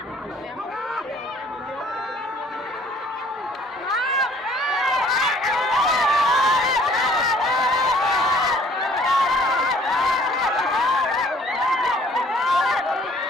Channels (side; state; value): both; normal; correlation 0.57